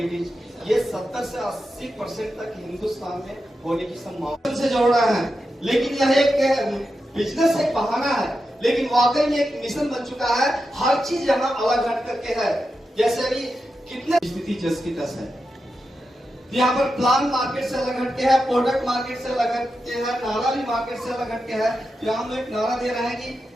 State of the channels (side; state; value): both; normal; correlation 0.89